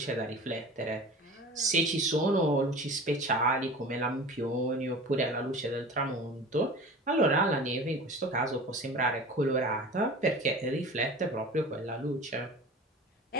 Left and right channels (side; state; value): both; normal; correlation 0.37